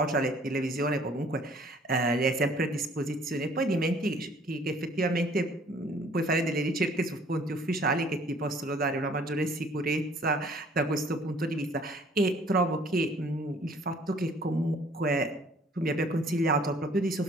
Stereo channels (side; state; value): both; normal; correlation 0.57